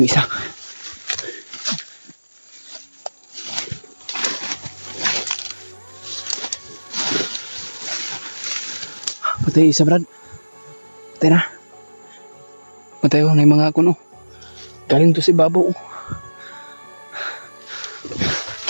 isa. Patay isa Brad. Patay na. Patay ko na yung mga kuno. Galing to si Babo.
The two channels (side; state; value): both; inverted; correlation -1.00